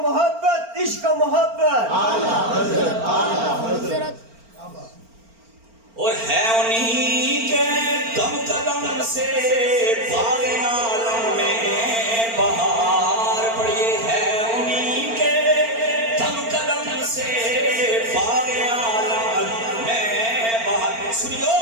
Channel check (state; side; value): late; left; 4.4 ms